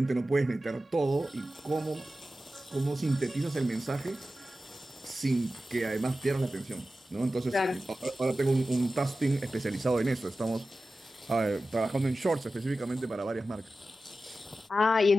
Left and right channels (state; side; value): normal; both; correlation 0.94